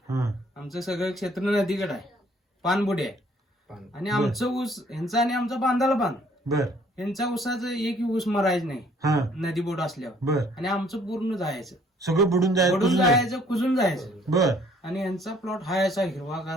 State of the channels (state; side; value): normal; both; correlation 0.60